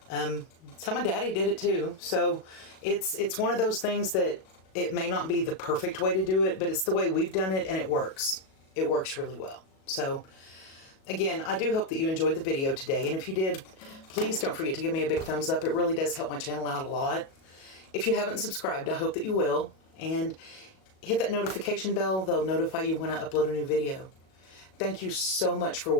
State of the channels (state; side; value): late; right; 37 ms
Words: It's how my daddy did it too. So it's one of those things that it may not be the perfect way to do it, but it's the way we've done it, and it works. It works really well. So again, I do hope that you enjoyed the video today, and if you did, please don't forget to give me a big thumbs up. It really does help my channel out a lot. If you haven't subscribed, I hope that you will, and hit that notification bell. They'll notify you when I upload a new video. Thank you so much for